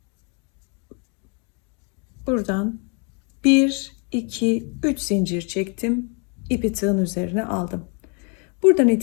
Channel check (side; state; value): right; quieter; 36.4 dB